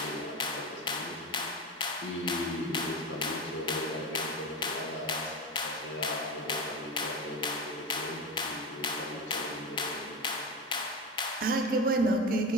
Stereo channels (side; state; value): both; normal; correlation 0.22